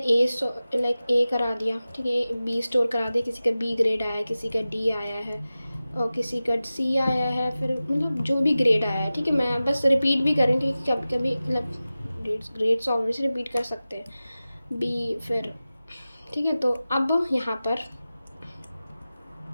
लाइक ए करा दिया। ठीक है, बी स्टोर करा दिया, किसी का बी ग्रेड आया है, किसी का डी आया है और किसी का सी आया है, फिर मतलब जो भी ग्रेड आया है। ठीक है, मैं बस रिपीट भी करूँ क्योंकि कभी कभी मतलब ग्रेड्स ऑब्वियसली रिपीट कर सकते हैं, बी फिर। ठीक है, तो अब यहाँ पर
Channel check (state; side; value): inverted; both; correlation -0.95